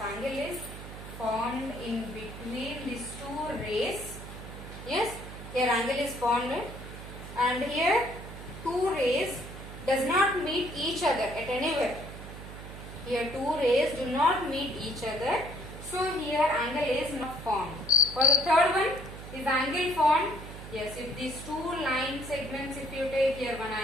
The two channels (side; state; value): right; noise; hum, 12 dB below the sound